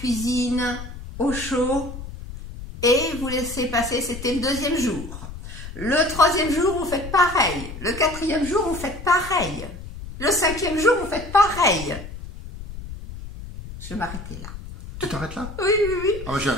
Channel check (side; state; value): left; noise; rumble, 11 dB below the sound